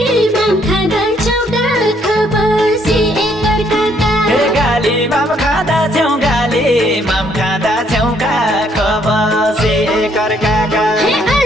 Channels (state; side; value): normal; both; correlation 0.68